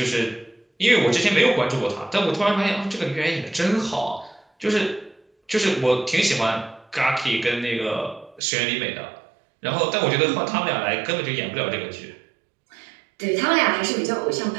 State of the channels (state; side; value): drops out; left; at 8.4 s